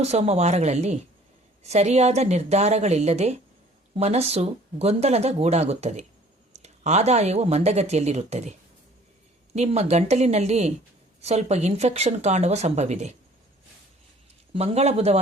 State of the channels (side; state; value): both; normal; correlation 0.53